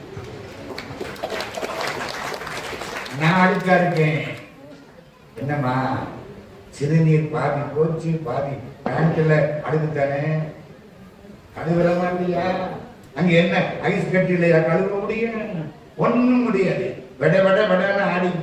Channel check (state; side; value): identical; both; correlation 1.00